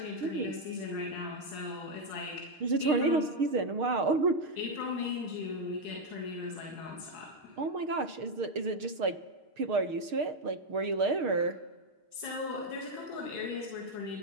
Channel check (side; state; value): left; late; 6.5 ms